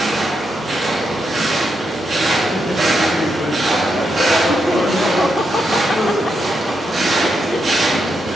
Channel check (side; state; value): both; normal; correlation 0.83